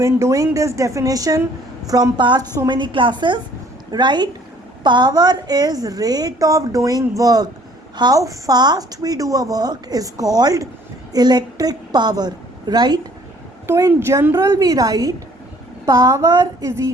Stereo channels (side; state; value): both; normal; correlation 0.57